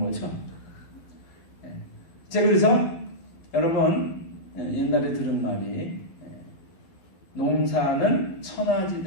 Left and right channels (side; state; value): right; late; 12 ms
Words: 제가 그래서 여러분 옛날에 들은 말이, 농사는